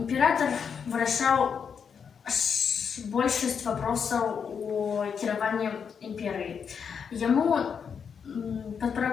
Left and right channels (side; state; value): right; quieter; 6.7 dB